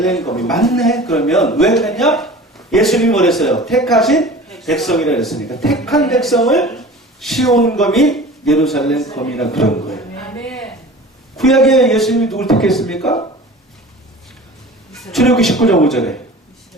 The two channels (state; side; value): normal; both; correlation 0.40